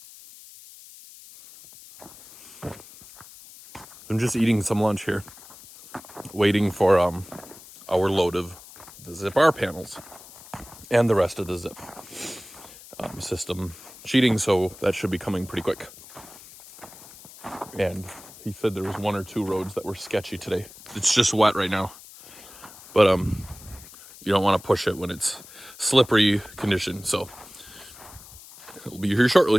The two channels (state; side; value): noise; left; hiss, 19 dB below the sound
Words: I'm just eating some lunch here, waiting for our load of the Zip R panels and the rest of the Zip system sheeting, so that should be coming pretty quick. And he said there was 1 or 2 roads that were sketchy today. It's just wet right now, but you don't want to push it when it's slippery condition, so it'll be here